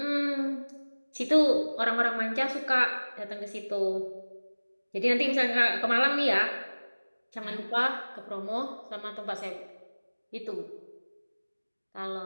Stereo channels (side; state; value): both; inverted; correlation -1.00